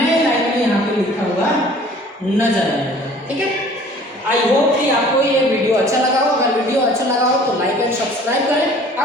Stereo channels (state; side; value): normal; both; correlation 0.50